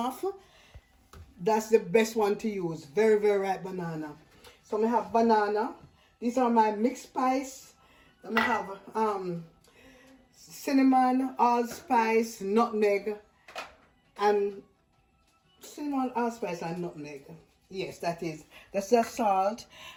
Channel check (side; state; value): both; identical; correlation 1.00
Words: that's the best one to use. Very, very ripe banana. So I have banana. These are my mixed spice. I have cinnamon, allspice, nutmeg, and cinnamon, allspice, and nutmeg. Yes, that's the salt.